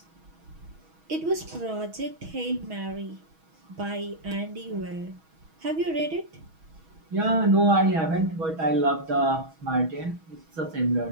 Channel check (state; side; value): late; left; 6.2 ms